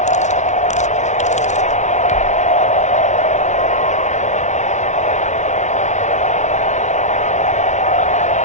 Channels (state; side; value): late; right; 0.34 ms